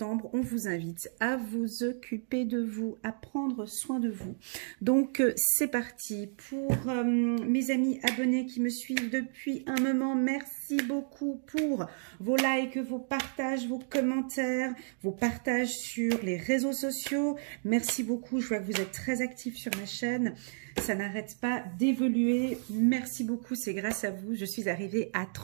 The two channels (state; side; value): silent; left; digital silence